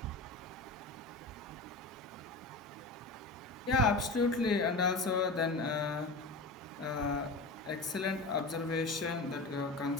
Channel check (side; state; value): right; quieter; 3.2 dB